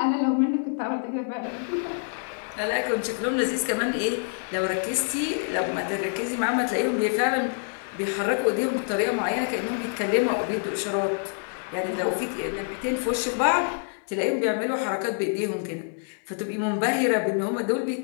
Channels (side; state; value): right; silent; 61 dB below the other